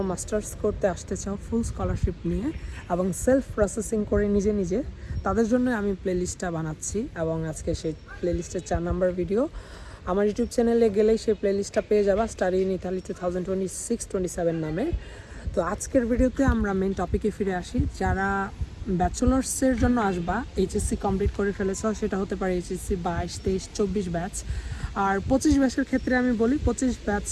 মাস্টার্স করতে আসতে চাও ফুল স্কলারশিপ নিয়ে এবং সেলফ প্রসেসিং করে নিজে নিজে, তাদের জন্য আমি প্লেলিস্টটা বানাচ্ছি এবং আজকে সেই প্লেলিস্টের 4 নাম্বার ভিডিও। আমার ইউটিউব চ্যানেলে গেলেই সেই প্লেলিস্টটা পেয়ে যাবা, স্টাডি ইন ইতালি 2026-27 নামে। তো আজকের ভিডিওতে আমরা মেন টপিকে ফিরে আসি। যারা ব্যাচেলার্সের জন্য আসবা, এইচএসসি কমপ্লিট করে ফেলেছ, সেটা হতে পারে এইচএসসি 22, 23, 24 ব্যাচ। আর 25 ব্যাচের ক্ষেত্রে আমি বলি 25 ব্যাচ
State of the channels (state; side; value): identical; both; correlation 1.00